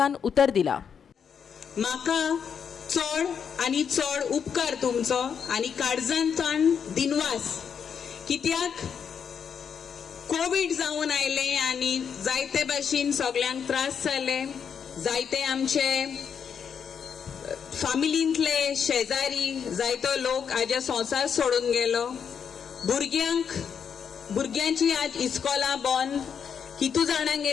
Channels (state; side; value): quieter; right; 7.2 dB